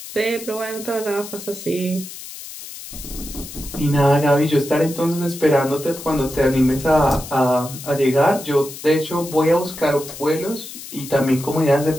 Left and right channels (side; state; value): left; noise; hiss, 13 dB below the sound